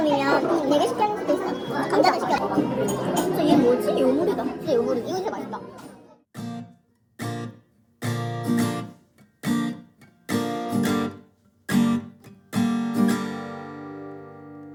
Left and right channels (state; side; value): identical; both; correlation 1.00